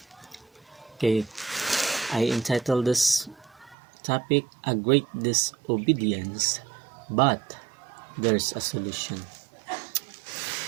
Okay, I entitled this topic A Great Disobedience, but there's a solution.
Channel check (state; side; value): drops out; left; at 3.8 s